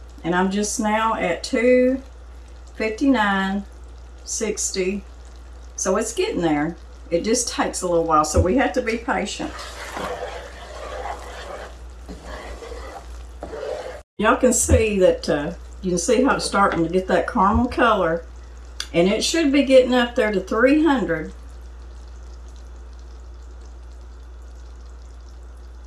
And I'm just now at 259.60. So it's getting there. It just takes a little while, so we have to be patient. Y'all can see that, you can see how it's starting to get that caramel color, and it should be getting up there to 300.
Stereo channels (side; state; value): both; identical; correlation 1.00